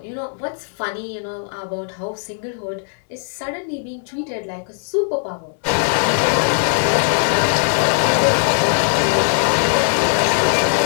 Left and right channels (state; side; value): silent; right; 61 dB below the other